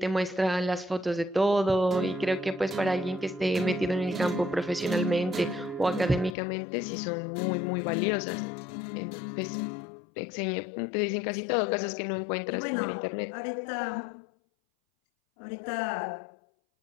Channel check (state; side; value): drops out; right; at 6.4 s